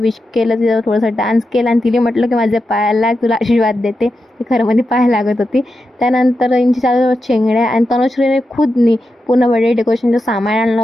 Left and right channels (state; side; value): normal; both; correlation 0.88